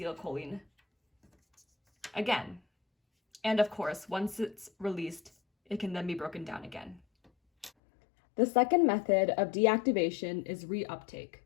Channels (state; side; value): drops out; right; at 7.7 s